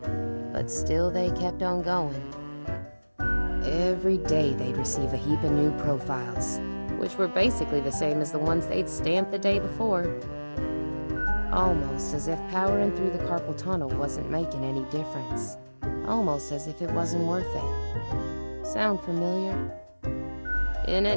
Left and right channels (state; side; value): inverted; both; correlation -1.00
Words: but still they kept on going. Every day they'd receive a heap of new profiles, which were basically the same as the ones they'd stamped the day before. Almost as if powering through the carpal tunnel wasn't making any difference. Almost as if it wasn't worth it. Sound familiar? In